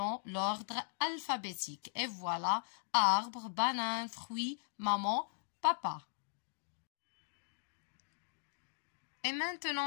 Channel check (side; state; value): right; silent; digital silence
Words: l'ordre alphabétique. Et voilà, arbre, banane, fruit, maman, papa. Et